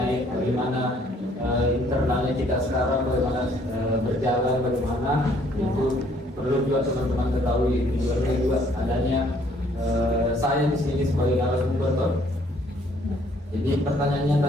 bagaimana internalnya kita sekarang, bagaimana berjalan, bagaimana itu perlu juga teman-teman ketahui. Tujuannya juga adanya saya di sini sebagai narasumber toh. Jadi pertanyaannya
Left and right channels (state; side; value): normal; both; correlation 0.63